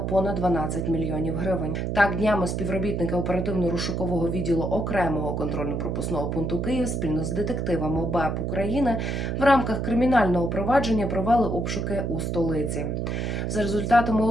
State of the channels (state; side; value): noise; right; hum, 1 dB below the sound